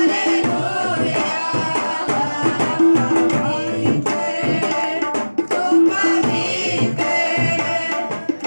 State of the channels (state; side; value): inverted; both; correlation -1.00